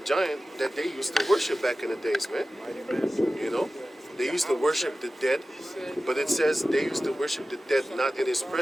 giant that they used to worship back in the days, man. You know? They used to worship the dead, but it says they used to worship the dead not in his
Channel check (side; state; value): both; normal; correlation 0.95